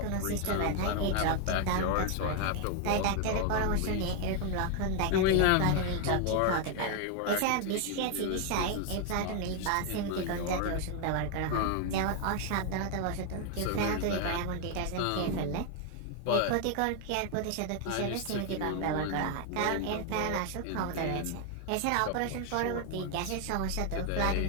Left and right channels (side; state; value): both; different; correlation 0.01